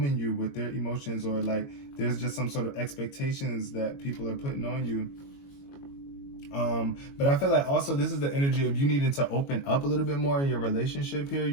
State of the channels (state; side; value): late; right; 22 ms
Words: you with their emotions, or like there's just some sort of expectations that people are putting on you. But I feel like also this is the energy of you needing to open up a little bit more in your relationship here.